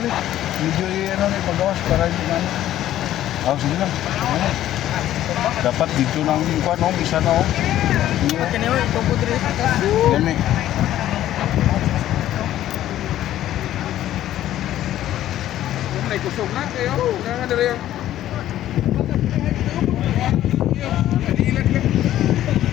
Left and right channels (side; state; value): right; quieter; 12.9 dB